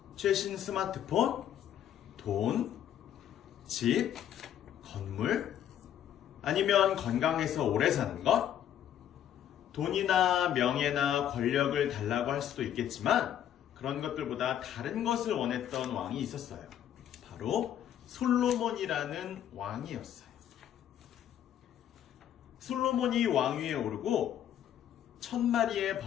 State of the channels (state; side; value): quieter; right; 10.5 dB